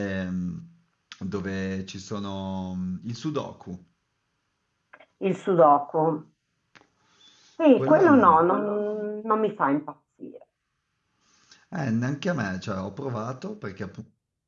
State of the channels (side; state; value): both; identical; correlation 1.00